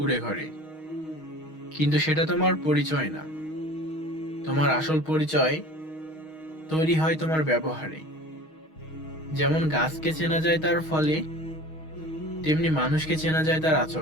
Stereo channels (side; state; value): right; late; 6.4 ms